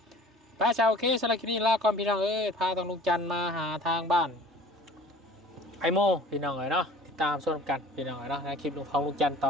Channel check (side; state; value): both; normal; correlation 0.47